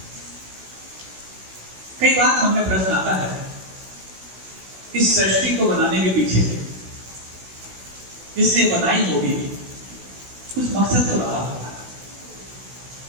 कई बार मन में प्रश्न आता है, इस सृष्टि को बनाने के पीछे जिसने बनाई होगी कुछ मकसद तो रहा होगा,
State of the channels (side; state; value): left; late; 16 ms